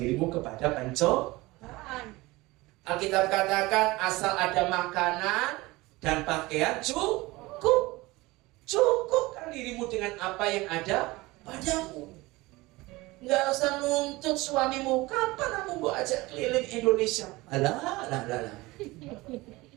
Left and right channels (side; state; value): left; quieter; 21.1 dB